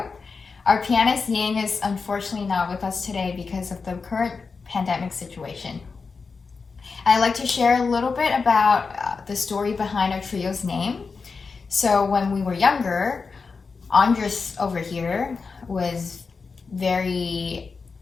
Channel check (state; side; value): quieter; right; 4.8 dB